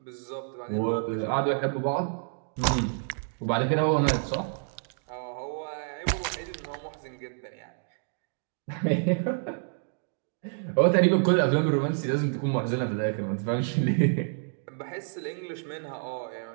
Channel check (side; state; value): left; silent; 59 dB below the other